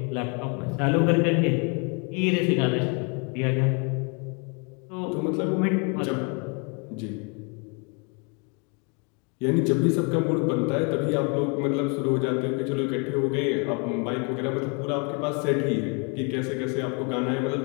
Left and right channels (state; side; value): quieter; right; 34.9 dB